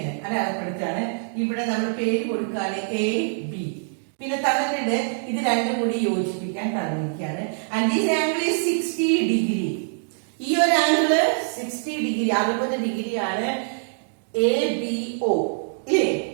അടയാളപ്പെടുത്താണ്. ഇവിടെ നമ്മൾ പേര് കൊടുക്കുകയാണ് എ ബി. പിന്നെ തന്നിട്ടുണ്ട് ഇത് രണ്ടും കൂടി യോജിപ്പിക്കാൻ തന്നിരിക്കുകയാണ്. And this angle is 60 degree. ഈ ഒരു ആംഗിള് 60 ഡിഗ്രി 60 ഡിഗ്രിയാണ് എ ബി ഒ ഇല്ലേ.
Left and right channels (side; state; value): left; silent; digital silence